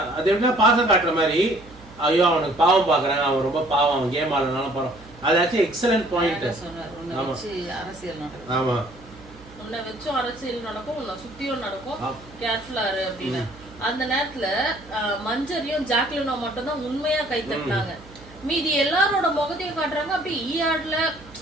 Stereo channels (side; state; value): right; noise; hum, 21 dB below the sound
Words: அது எப்படின்னா பாசம் காட்டுற மாதிரி, ஐயோ அவனுக்கு பாவம் பாக்குறாங்க, அவன் ரொம்ப பாவம், அவன் கேம் ஆடுறதுனால போறோம். அது ஆக்சுவலி எக்ஸலன்ட் பாயிண்ட். ஆமா உன்னை வச்சும் அரசியல் நடக்கும், உன்னை சுத்தியும் நடக்கும், கேர்ஃபுல்லா இரு அப்படின்னு. அந்த நேரத்துல மஞ்சரியும் ஜாக்லினும் மட்டும் தான் உண்மையா கை தட்டினாங்க. மீதி எல்லாரோட முகத்தையும் காட்டுறாங்க. அப்படி ஈஆர்ல